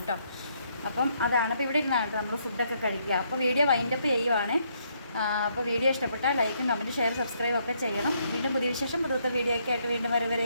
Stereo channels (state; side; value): inverted; both; correlation -0.72